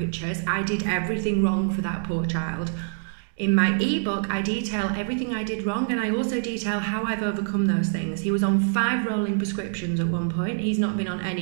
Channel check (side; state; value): left; silent; digital silence